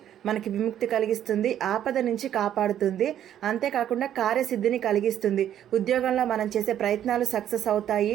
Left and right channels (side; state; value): left; quieter; 10.7 dB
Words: మనకి విముక్తి కలిగిస్తుంది, ఆపద నుంచి కాపాడుతుంది. అంతేకాకుండా కార్యసిద్ధిని కలిగిస్తుంది. ఉద్యోగంలో మనం చేసే ప్రయత్నాలు సక్సెస్ అవుతాయి.